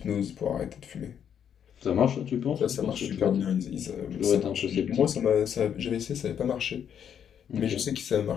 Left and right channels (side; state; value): right; quieter; 8.6 dB